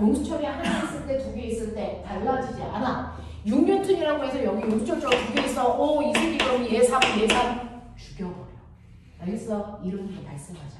하나 있을 때 2개 있을 때 달라지지 않아. 6뉴턴이라고 해서 여기 용수철 저울 2개 있어. 오, 이 새끼 그럼 얘 3 죽여버려. 알겠어? 이름도 발생하지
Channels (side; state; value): both; identical; correlation 1.00